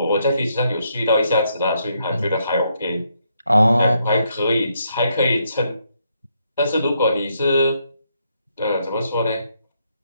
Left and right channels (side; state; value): both; inverted; correlation -0.76